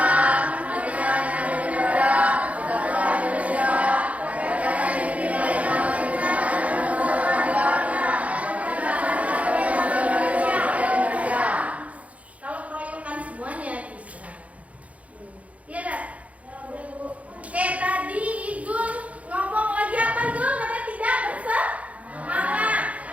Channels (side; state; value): left; late; 0.067 ms